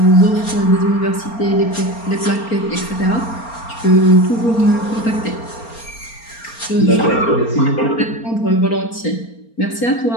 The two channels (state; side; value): late; right; 4.3 ms